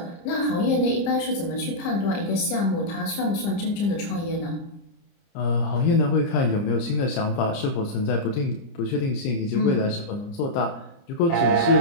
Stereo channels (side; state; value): right; late; 30 ms